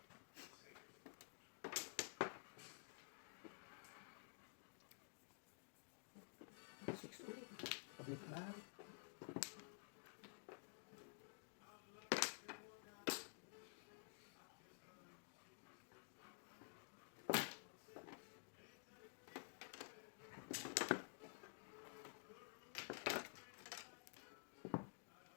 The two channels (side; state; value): right; silent; digital silence